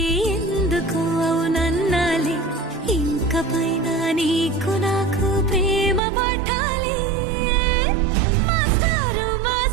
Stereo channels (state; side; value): drops out; left; at 6.0 s